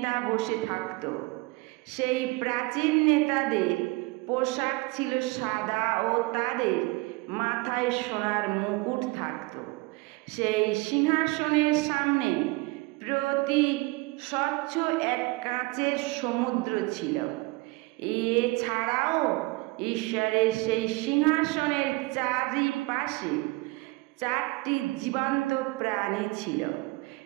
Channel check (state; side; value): quieter; left; 24.1 dB